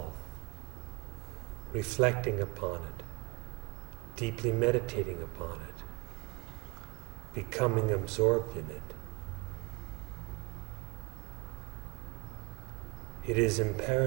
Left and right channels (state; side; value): quieter; left; 26.2 dB